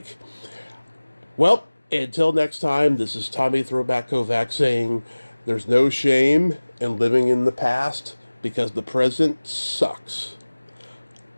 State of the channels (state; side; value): inverted; both; correlation -1.00